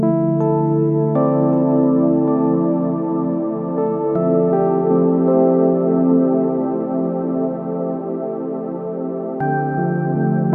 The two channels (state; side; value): identical; both; correlation 1.00